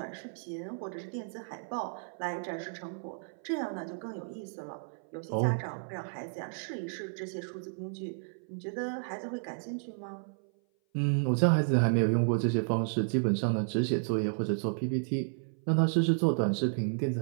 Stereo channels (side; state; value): left; silent; 56 dB below the other